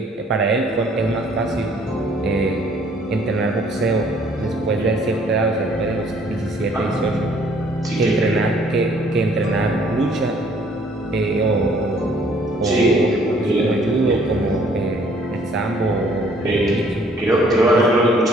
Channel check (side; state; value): both; normal; correlation 0.60